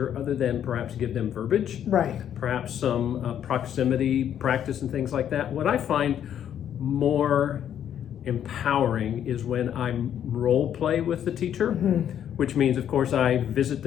other than perhaps give them verbiage. Right. Perhaps some proximity practice and things like that. What I find more empowering is when I role play with the teacher, which means, of course, I visit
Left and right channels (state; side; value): quieter; right; 9.7 dB